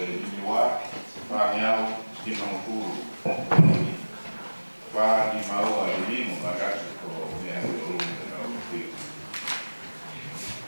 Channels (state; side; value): inverted; both; correlation -1.00